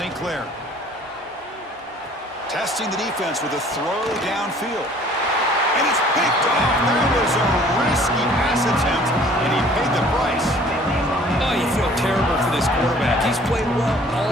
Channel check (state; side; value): normal; both; correlation 0.53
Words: Clair. Testing the defense with a throw downfield. And it's picked off. That was a risky pass attempt, and he paid the price. Oh, you feel terrible for this quarterback. He's played well